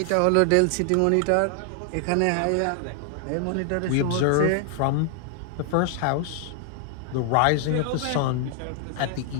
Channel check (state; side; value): different; both; correlation 0.00